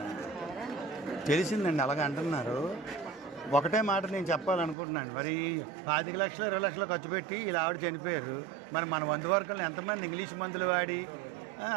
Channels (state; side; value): drops out; left; at 4.8 s